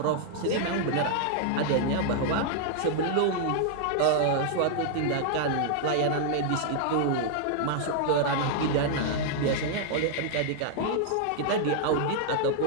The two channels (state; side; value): different; both; correlation -0.01